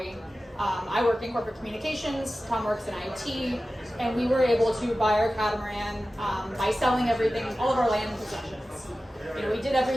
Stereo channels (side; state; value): both; normal; correlation 0.95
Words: I work in corporate communications, Tom works in IT, and we were able to buy our catamaran by selling everything, all of our land possessions. We did